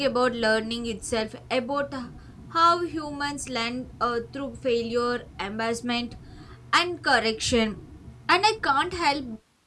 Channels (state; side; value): identical; both; correlation 1.00